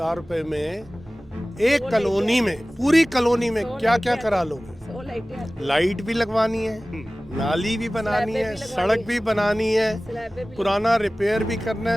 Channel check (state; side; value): normal; both; correlation 0.98